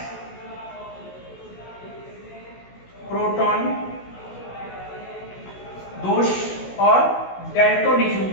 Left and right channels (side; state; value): right; late; 16 ms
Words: प्रोटॉन दोष और डेल्टोनिज्म